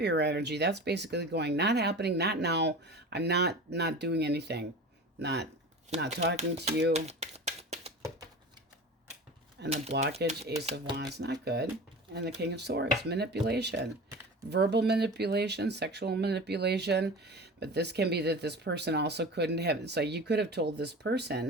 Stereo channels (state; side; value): normal; both; correlation 0.34